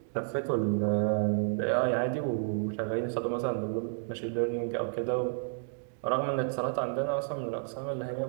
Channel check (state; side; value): silent; left; digital silence